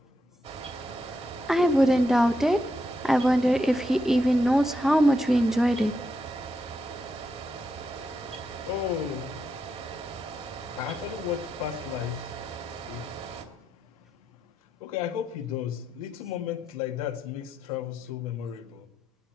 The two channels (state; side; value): normal; both; correlation 0.83